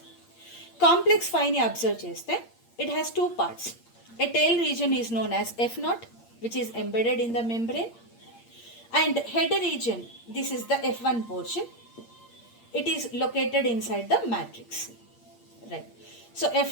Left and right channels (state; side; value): late; right; 8.6 ms